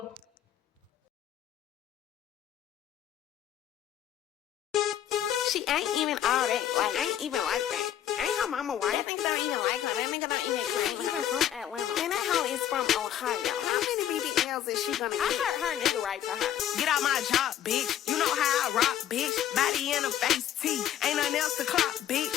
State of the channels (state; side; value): quieter; right; 10.9 dB